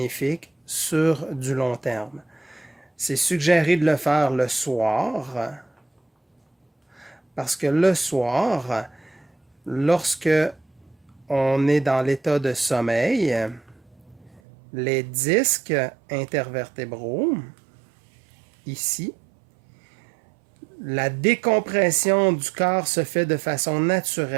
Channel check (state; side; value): drops out; left; at 14.4 s